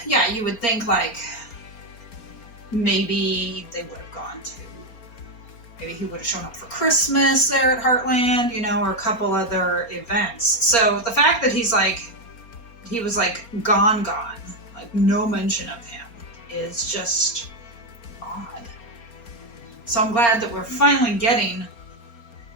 yeah, you would think like maybe they would have gone to, maybe he would have shown up for Christmas there at Heartland, or a couple other events. So the fact that he was like gone, like no mention of him, is just odd. So I'm glad that we're finally getting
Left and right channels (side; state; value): right; late; 4.3 ms